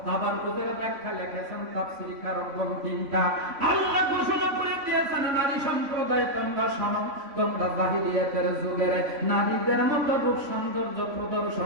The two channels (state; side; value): late; left; 3.5 ms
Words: তাবাররুজের ব্যাখ্যা লিখেছেন তাফসীরকারগণ 3টা। আল্লাহ ঘোষণা করে দিয়ে দিয়েছেন নারী সম্প্রদায় তোমরা শোনো, তোমরা জাহিলিয়াতের যুগের নারীদের মতো রূপ সৌন্দর্য